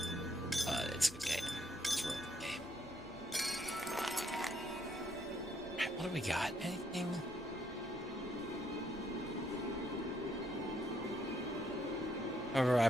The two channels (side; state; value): both; normal; correlation 0.72